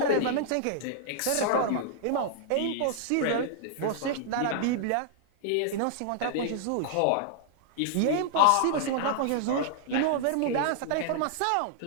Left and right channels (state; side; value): different; both; correlation -0.01